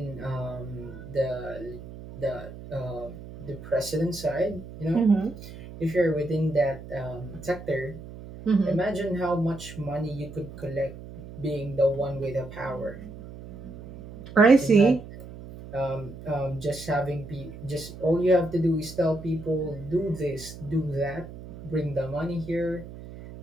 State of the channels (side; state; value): right; noise; hum, 14 dB below the sound